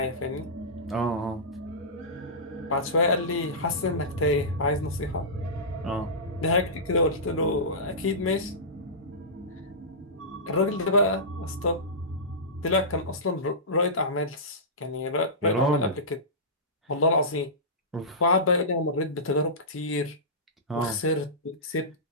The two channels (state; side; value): normal; both; correlation -0.18